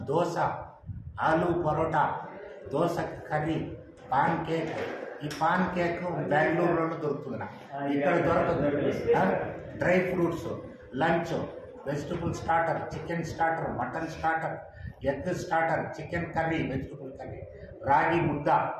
dosa, aloo paratha, dosa curry, pancake. ఈ పాన్ కేక్ బెంగళూరులో దొరుకుతుంది, ఇక్కడ దొరకదు. Dry fruits, lunch, vegetable starter, chicken starter, mutton starter, egg starter, chicken curry, vegetable curry, ragi mudda,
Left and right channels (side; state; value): both; identical; correlation 1.00